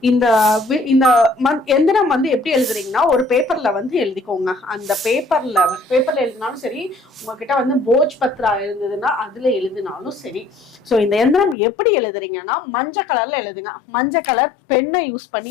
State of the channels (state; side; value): drops out; right; at 11.6 s